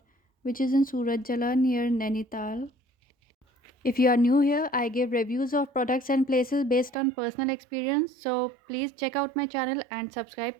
which is in Surat Jala near Nainital. If you are new here, I give reviews of products and places based on personal experience. So please check out my channel and subscribe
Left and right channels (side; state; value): left; drops out; at 7.0 s